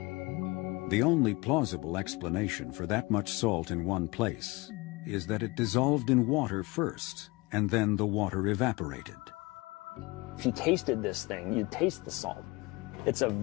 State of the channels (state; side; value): quieter; right; 24.1 dB